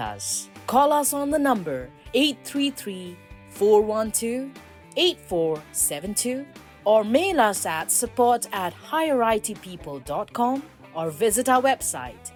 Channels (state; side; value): identical; both; correlation 1.00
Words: Call us on the number 833-412-8472 or mail us at support@higherightpeople.com or visit our website